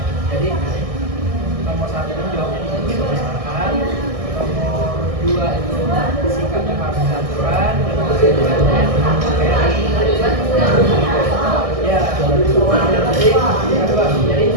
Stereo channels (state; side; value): late; left; 1.6 ms